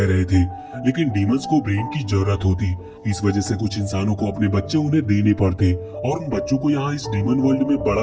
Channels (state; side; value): identical; both; correlation 1.00